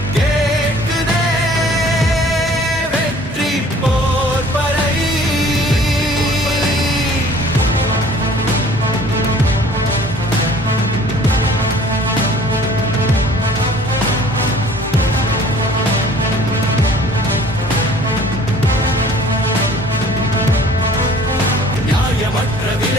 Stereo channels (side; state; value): both; normal; correlation 0.52